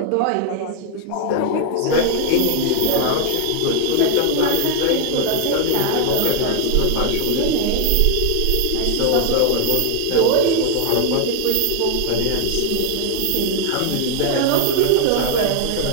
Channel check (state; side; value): different; both; correlation 0.00